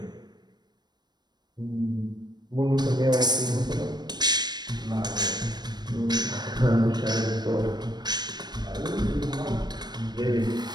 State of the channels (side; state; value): left; late; 0.20 ms